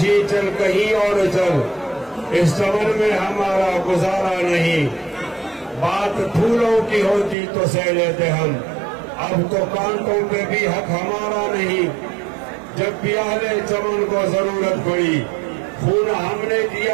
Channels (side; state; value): left; drops out; at 7.4 s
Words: چل کہیں اور چل اس چمن میں ہمارا گزارا نہیں بات پھولوں کی ہوتی تو سہ لیتے ہم اب تو کانٹوں پہ بھی حق ہمارا نہیں جب بھی اہل چمن کو ضرورت پڑی خون ہم نے